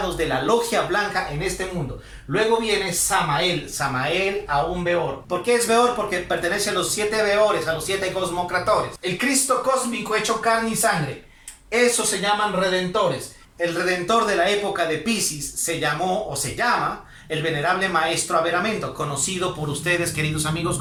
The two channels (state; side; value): identical; both; correlation 1.00